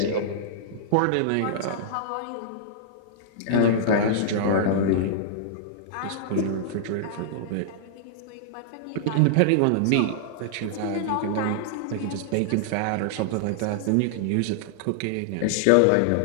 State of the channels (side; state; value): both; different; correlation -0.01